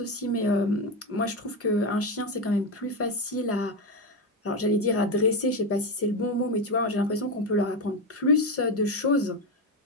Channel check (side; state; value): both; normal; correlation 0.12